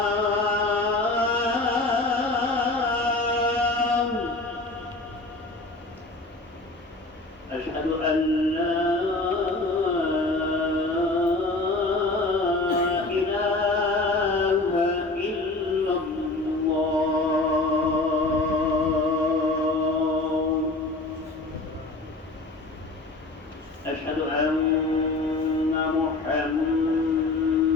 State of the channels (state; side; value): quieter; right; 3.0 dB